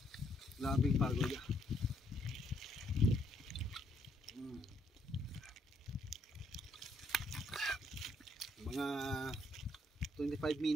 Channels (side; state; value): both; normal; correlation 0.72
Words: Labing pagod. Mga 25